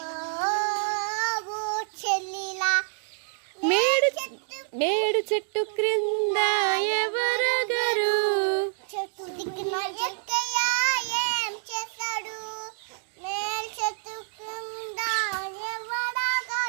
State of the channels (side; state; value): left; silent; digital silence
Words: చెల్లిలా. మేడు చెట్టు క్రింద ఎవరగరు, చెట్టు దిక్కున ఎక్కయ్య ఏం చేశాడు, మేల్ చెట్టు కింద